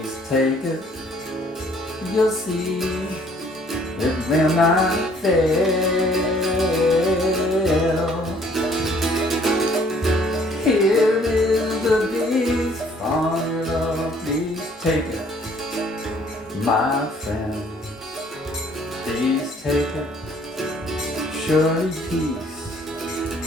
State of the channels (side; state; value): both; normal; correlation 0.60